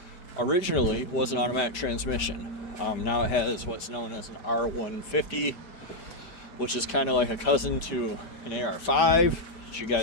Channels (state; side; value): late; right; 5.1 ms